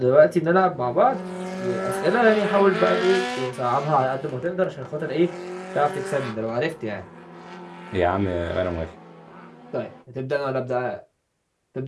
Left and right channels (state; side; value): identical; both; correlation 1.00